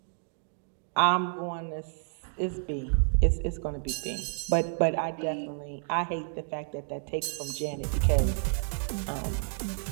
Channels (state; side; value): silent; left; digital silence